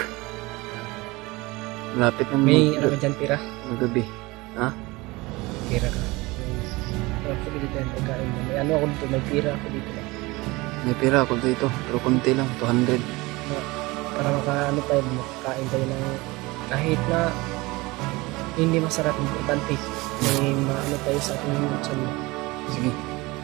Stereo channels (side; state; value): left; quieter; 22.5 dB